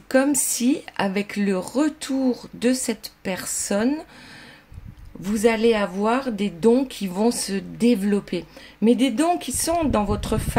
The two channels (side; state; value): both; identical; correlation 1.00